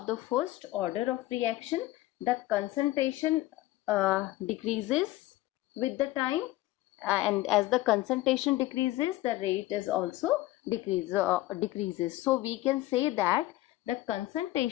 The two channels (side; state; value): right; quieter; 17.0 dB